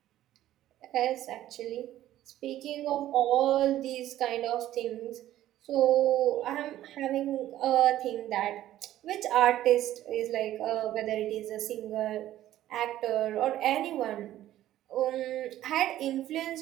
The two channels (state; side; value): quieter; left; 13.4 dB